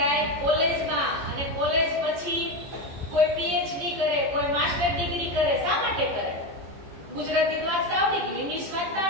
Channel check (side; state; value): left; late; 14 ms